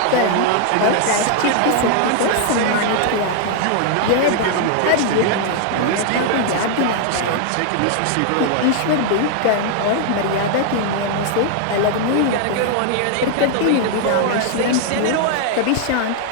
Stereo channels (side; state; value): both; different; correlation 0.00